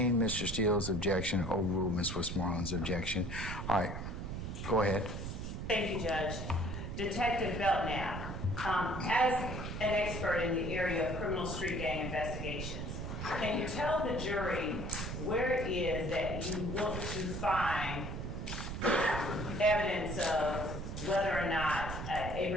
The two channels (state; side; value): noise; right; rumble, 5 dB below the sound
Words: Mr. Steele's objection, overruled Ms. Westmoreland's objection. All right, go ahead. Thank you, Judge. Detective Belknap, as an expert in the area of criminal street gang investigations, can you tell the jury where it is that you look to find evidence of whether or not a